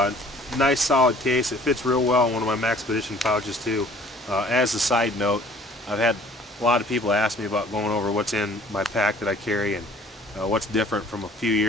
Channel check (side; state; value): both; normal; correlation 0.54